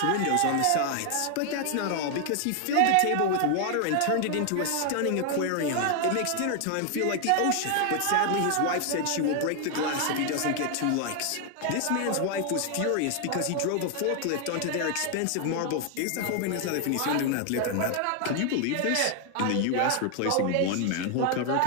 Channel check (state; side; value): different; both; correlation 0.00